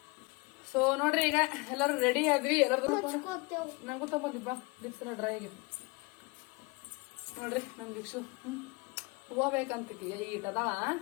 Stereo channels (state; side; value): quieter; right; 27.6 dB